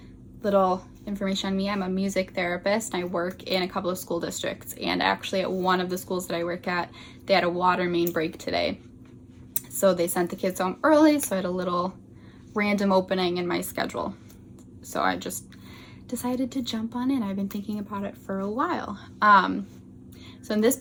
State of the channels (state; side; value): identical; both; correlation 1.00